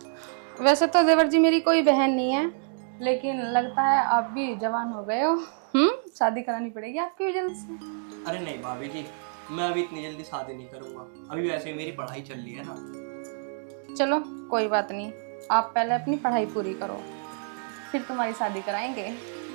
वैसे तो देवर जी मेरी कोई बहन नहीं है, लेकिन लगता है आप भी जवान हो गए हो। शादी करानी पड़ेगी आपकी भी जल्द से। अरे नहीं भाभी जी, मैं अभी इतनी जल्दी शादी नहीं करूंगा। अभी वैसे ही मेरी पढ़ाई चल रही है ना। चलो कोई बात नहीं, आप पहले अपनी पढ़ाई पूरी करो, फिर तुम्हारी शादी कराएंगे।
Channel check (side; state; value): left; silent; digital silence